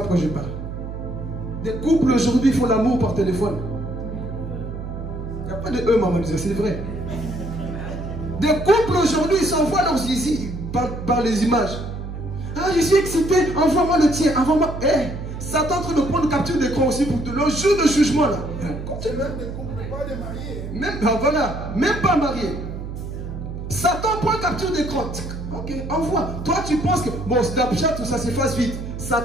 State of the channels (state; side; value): noise; right; hum, 8 dB below the sound